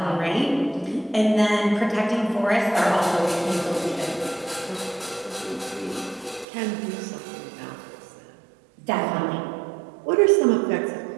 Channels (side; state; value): left; drops out; at 6.5 s